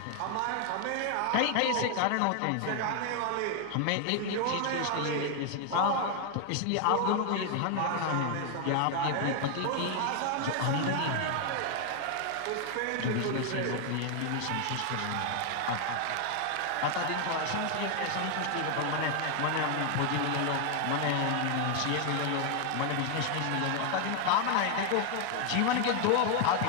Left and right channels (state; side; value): different; both; correlation 0.01